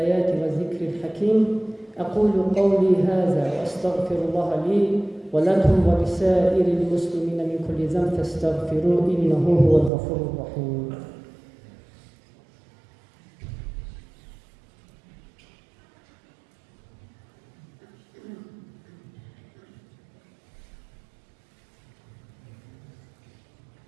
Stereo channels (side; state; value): left; drops out; at 9.9 s